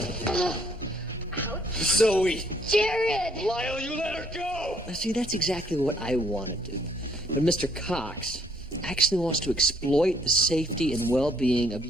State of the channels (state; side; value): normal; both; correlation 0.66